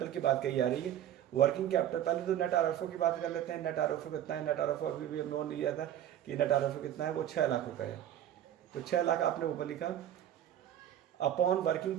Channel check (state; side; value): quieter; left; 11.2 dB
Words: की बात कही जा रही है। वर्किंग कैपिटल, पहले तो नेट आरएफओ की बात कर लेते हैं। नेट आरएफओ कितना है? नेट आरएफओ अभी भी हम लोन लिया था कि नेट आरएफओ कितना है, वो 6 लाख रुपए है। तो 6 लाख आपने ऊपर लिखा upon working